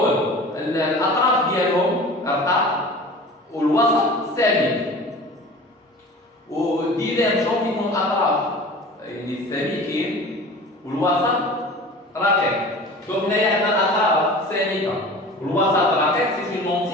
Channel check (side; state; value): both; normal; correlation 0.40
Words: الأطراف ديالهم رقاق والوسط ثابت. وديفيرجون كيكون الاطراف يعني سالكين والوسط رقيق. دونك هنايا عندنا الاطراف سالكه والوسط رقيق. سي اون